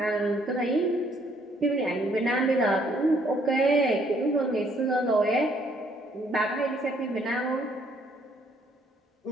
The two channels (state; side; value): normal; both; correlation 0.66